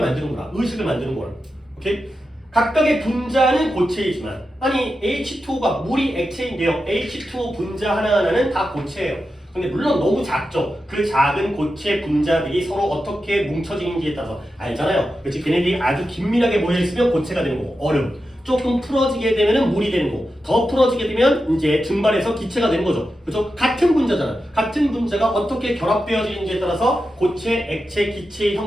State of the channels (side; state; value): both; normal; correlation 0.90